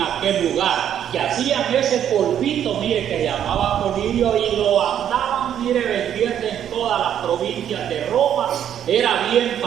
aquel lugar, que hacían ese polvito, mire, que se llamaba colirio, y lo andaban, mire, vendiendo en todas las provincias de Roma. Era bien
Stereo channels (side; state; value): left; quieter; 9.8 dB